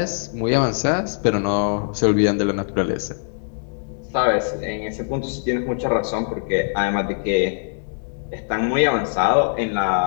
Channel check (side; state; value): right; silent; digital silence